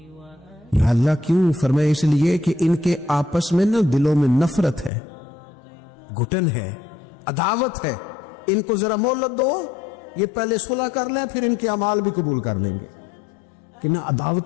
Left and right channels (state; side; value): drops out; right; at 4.9 s